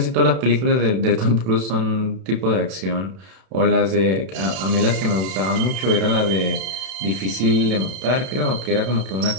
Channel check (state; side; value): late; left; 32 ms